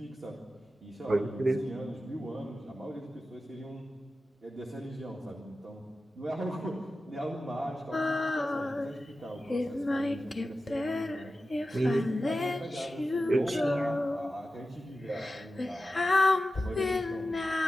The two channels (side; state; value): both; normal; correlation 0.93